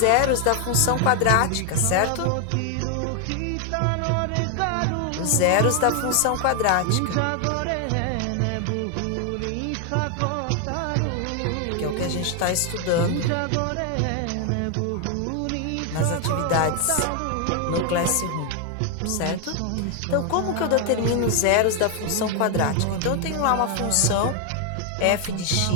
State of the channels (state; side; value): different; both; correlation 0.00